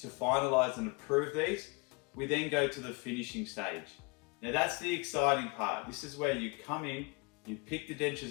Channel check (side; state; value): right; quieter; 28.6 dB